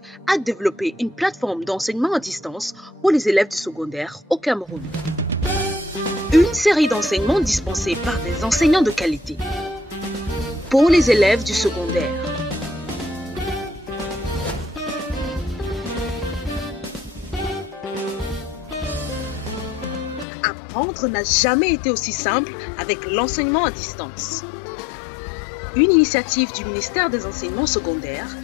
a développé une plateforme d'enseignement à distance pour les élèves du secondaire au Cameroun. Une série d'enseignements dispensés par des enseignants de qualité pour les élèves du secondaire. Apprendre n'a jamais été aussi simple avec l'enseignement à distance. Une initiative du ministère des Enseignements secondaires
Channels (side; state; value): right; drops out; at 20.2 s